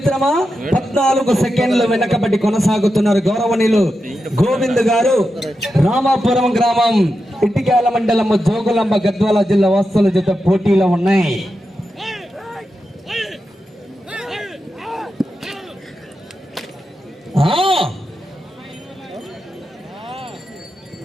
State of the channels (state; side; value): normal; both; correlation 0.89